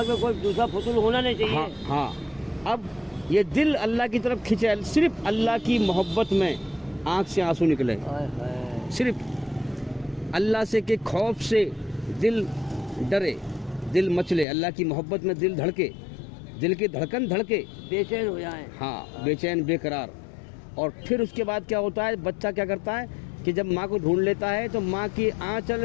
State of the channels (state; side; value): drops out; right; at 14.5 s